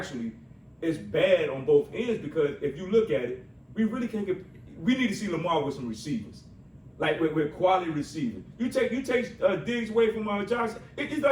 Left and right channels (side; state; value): both; identical; correlation 1.00